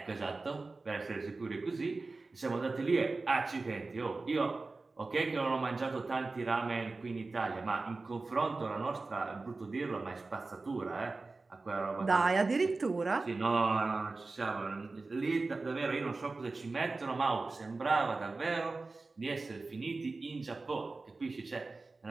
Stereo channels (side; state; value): left; quieter; 3.6 dB